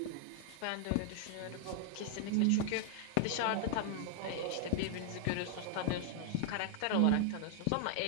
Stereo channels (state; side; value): different; both; correlation 0.00